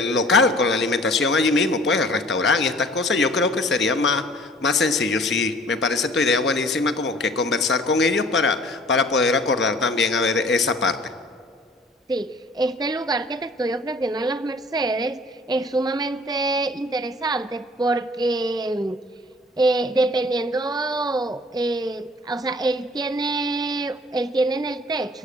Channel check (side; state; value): both; normal; correlation 0.51